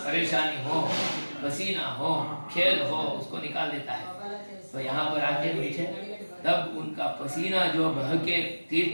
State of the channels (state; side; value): inverted; both; correlation -1.00